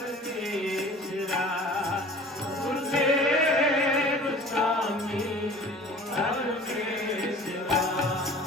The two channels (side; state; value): both; normal; correlation 0.44